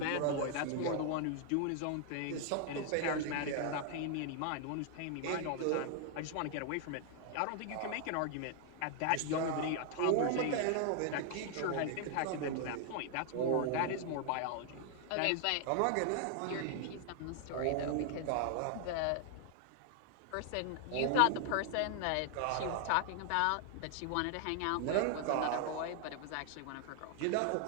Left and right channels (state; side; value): different; both; correlation 0.00